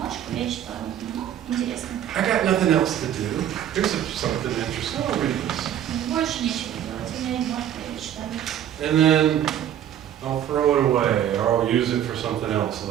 я читаю. Ну, интересно. I got nothing else to do. Here's something interesting. I'll read this. Больше нечего делать, у меня есть бумажка, я ее читаю. And then I'll throw it away, or I'll use it for something else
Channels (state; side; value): quieter; left; 10.7 dB